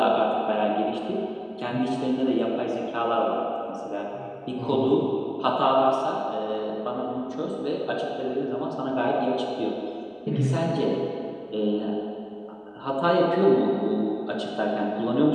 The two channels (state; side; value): identical; both; correlation 1.00